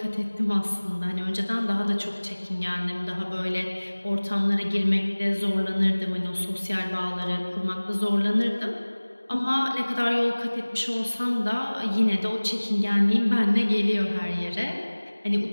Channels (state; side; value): inverted; both; correlation -1.00